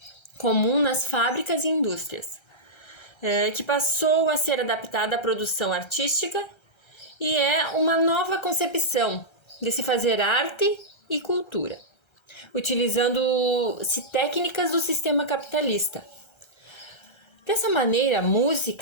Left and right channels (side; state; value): right; late; 1.3 ms